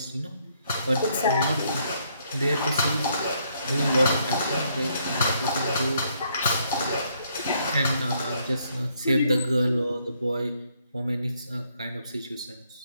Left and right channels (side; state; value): both; inverted; correlation -0.71